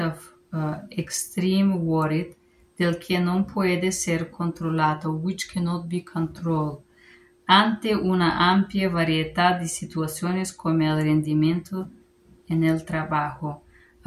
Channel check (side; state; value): both; identical; correlation 1.00